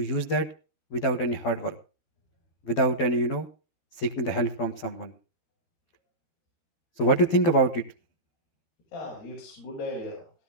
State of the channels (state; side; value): late; right; 12 ms